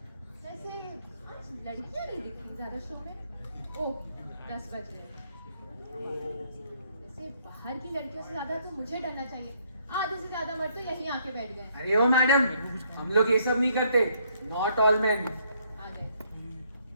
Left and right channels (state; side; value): inverted; both; correlation -0.69